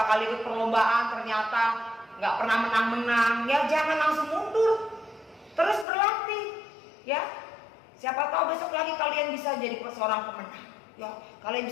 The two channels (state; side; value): drops out; right; at 5.9 s